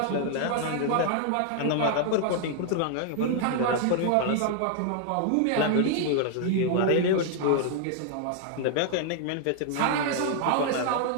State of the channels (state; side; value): different; both; correlation 0.00